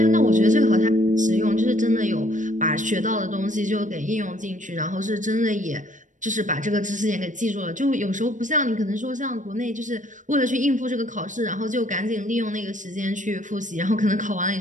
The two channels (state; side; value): late; left; 0.37 ms